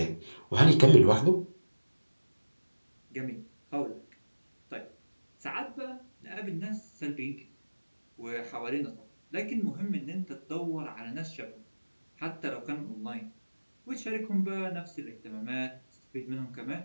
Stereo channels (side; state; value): both; inverted; correlation -1.00